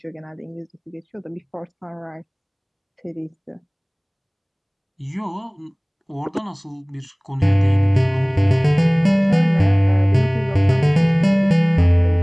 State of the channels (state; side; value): identical; both; correlation 1.00